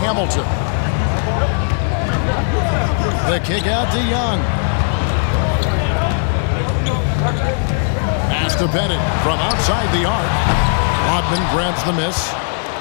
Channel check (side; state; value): right; silent; digital silence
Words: The kick out to Young. Pass to Bennett from outside the arc. Rodman grabs the miss.